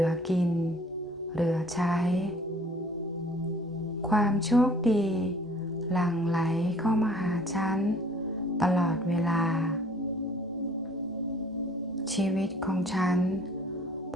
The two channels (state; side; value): normal; both; correlation 0.54